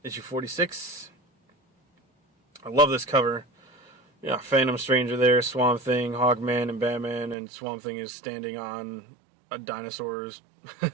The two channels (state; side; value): drops out; left; at 7.4 s